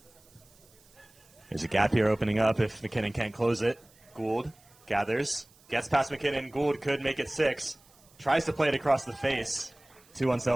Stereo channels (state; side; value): noise; right; hiss, 29 dB below the sound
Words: There's a gap here opening up if McKinnon can't close it. Gould gathers, gets past McKinnon. Gould could make it 6. Tries to play it across the face. Too